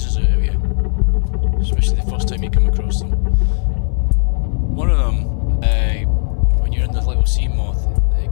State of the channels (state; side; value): silent; right; digital silence